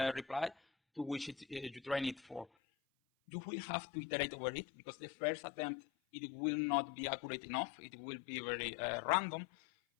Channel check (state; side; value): drops out; right; at 2.5 s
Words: reply to which you train it for. You will have to iterate over it, because the first attempt, it will not be accurate enough. It will be very random.